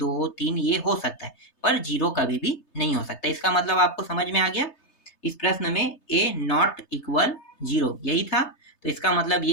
3 ये हो सकता है, पर 0 कभी भी नहीं हो सकता। इसका मतलब आपको समझ में आ गया। इस प्रश्न में a नॉट इक्वल 0 यही था, तो इसका मतलब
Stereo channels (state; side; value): late; right; 3.3 ms